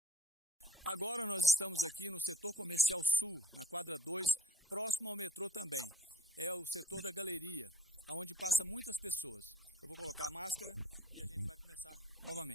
Agora nós estamos aqui no setor comercial sul, na quadra 2, próximo ao metrô também. É o setor da galeria, onde passa muitas pessoas. Eu vou colocar a máscara e a gente vai começar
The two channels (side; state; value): both; normal; correlation 0.52